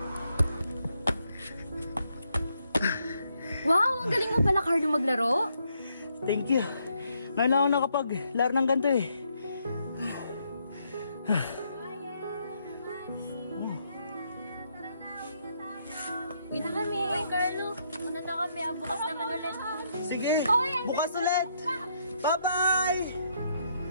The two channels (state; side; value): inverted; both; correlation -0.75